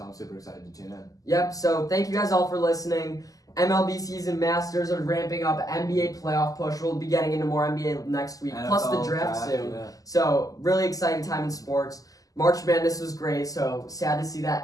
I'm super excited to tune in. Yep, so thank you guys all for listening. MLB season, Masters are ramping up. NBA playoff push. We'll be getting into more NBA next week, plus the NFL draft soon. Yeah. So really exciting time in sports. March Madness was great, so sad to see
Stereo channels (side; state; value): right; late; 0.17 ms